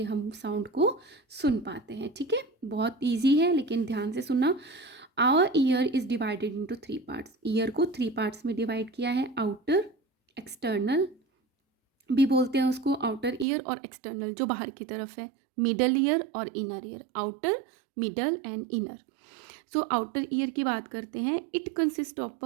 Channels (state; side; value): drops out; left; at 13.5 s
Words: हम साउंड को सुन पाते हैं। ठीक है, बहुत ईजी है, लेकिन ध्यान से सुनना। Our ear is divided into 3 parts. Ear को 3 पार्ट्स में डिवाइड किया है। आउटर, एक्सटर्नल भी बोलते हैं उसको, आउटर ईयर और एक्सटर्नल जो बाहर की तरफ है। मिडल ईयर और inner ear, outer, middle and inner. So outer ear की बात करते हैं। It consist of